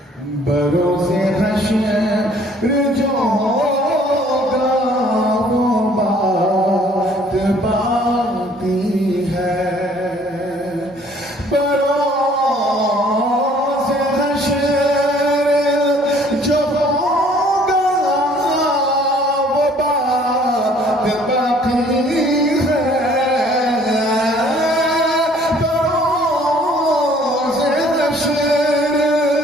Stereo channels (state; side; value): normal; both; correlation 0.57